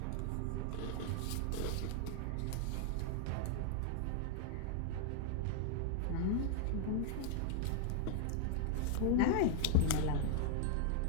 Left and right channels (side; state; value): both; different; correlation -0.01